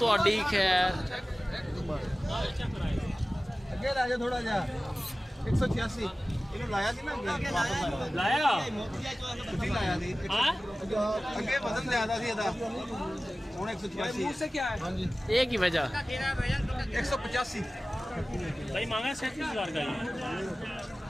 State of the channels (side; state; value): both; normal; correlation 0.97